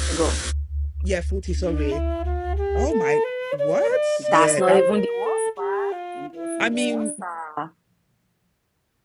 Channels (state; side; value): identical; both; correlation 1.00